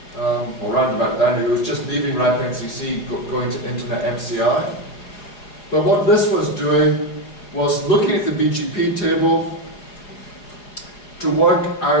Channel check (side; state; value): right; late; 4.8 ms